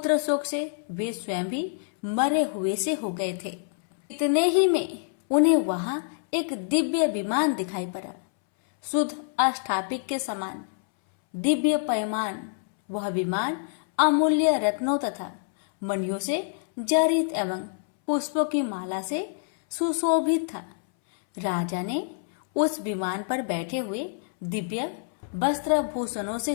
शोक से वे स्वयं भी मरे हुए से हो गए थे। इतने ही में उन्हें वहां एक दिव्य विमान दिखाई पड़ा, शुद्ध अष्टापिक के समान दिव्य पैमान। वह विमान अमूल्य रत्नों तथा मणियों से जड़ित एवं पुष्पों की माला से सुशोभित था। राजा ने उस विमान पर बैठे हुए दिव्य वस्त्र भूषणों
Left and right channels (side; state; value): right; silent; 60 dB below the other